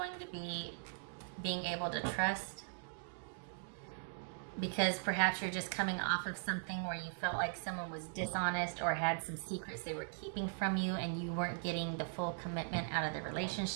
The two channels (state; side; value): silent; left; digital silence